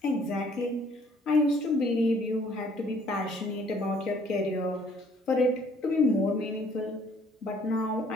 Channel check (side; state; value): both; normal; correlation 0.61